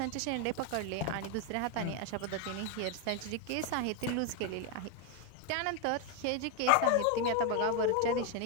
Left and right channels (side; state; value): both; different; correlation 0.01